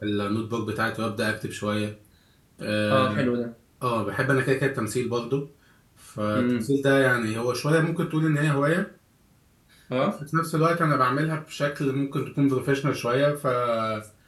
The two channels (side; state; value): both; identical; correlation 1.00